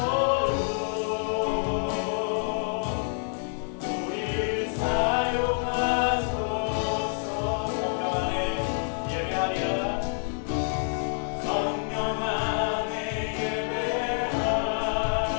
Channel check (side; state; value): right; silent; 58 dB below the other